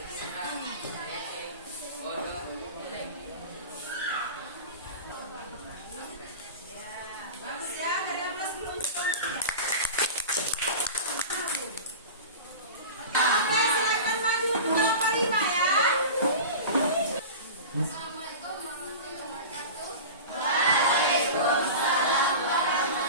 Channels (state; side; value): inverted; both; correlation -0.32